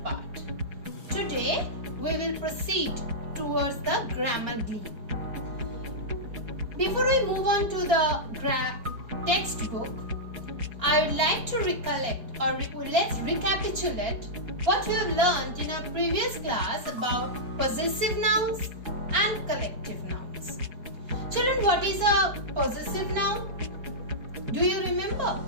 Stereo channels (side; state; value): left; late; 4.3 ms